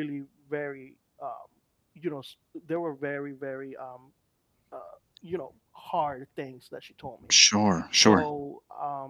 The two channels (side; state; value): both; identical; correlation 1.00